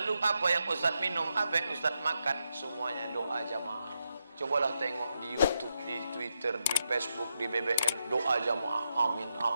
apa yang Ustadz minum, apa yang Ustadz makan? Semuanya doa jamaah. Cobalah tengok di YouTube, di Twitter, di Facebook, di BBM, doa jamaah. Amin,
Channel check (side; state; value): both; inverted; correlation -0.84